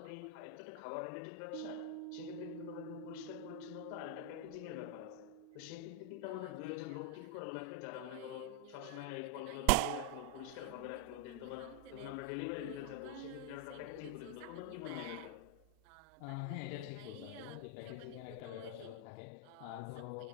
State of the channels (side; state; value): both; different; correlation 0.00